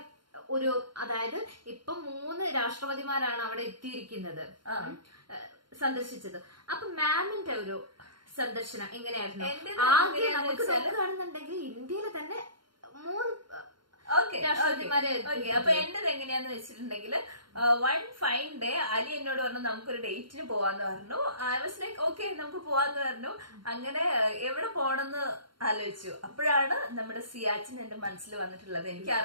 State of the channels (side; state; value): left; late; 0.72 ms